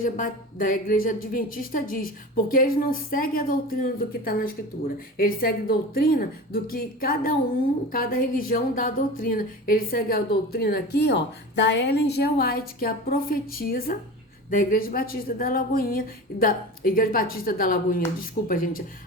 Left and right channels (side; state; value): both; normal; correlation 0.32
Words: adventista diz. Porque eles não seguem a doutrina do que está na Escritura. Eles seguem a doutrina do que cada religião dá a doutrina. Eles seguem a doutrina aqui, ó, da Ellen G. White, que é a profetisa da Igreja Batista da Lagoinha, desculpa, gente.